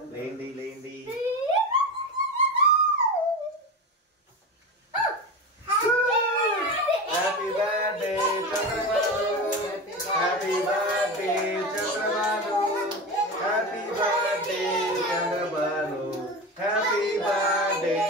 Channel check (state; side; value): normal; both; correlation 0.24